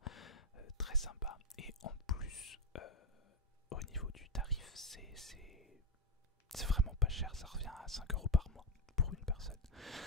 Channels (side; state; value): both; normal; correlation 0.09